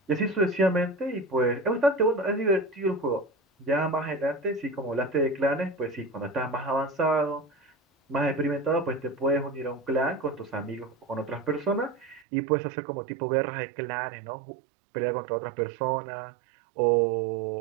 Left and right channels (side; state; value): left; drops out; at 12.2 s